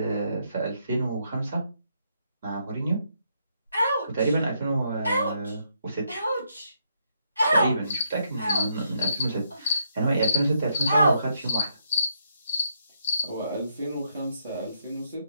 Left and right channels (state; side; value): inverted; both; correlation -0.74